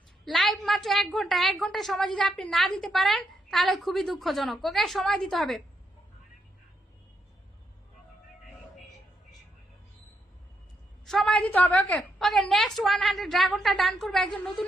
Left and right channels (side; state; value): both; normal; correlation 0.79